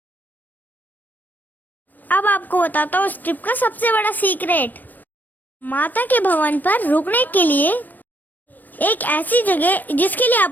अब आपको बताता हूँ इस ट्रिप का सबसे बड़ा सीक्रेट। माता के भवन पर रुकने के लिए एक ऐसी जगह जिसके लिए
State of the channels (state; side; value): late; right; 0.088 ms